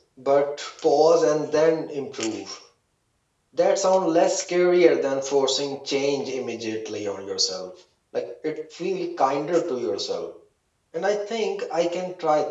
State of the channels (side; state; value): both; identical; correlation 1.00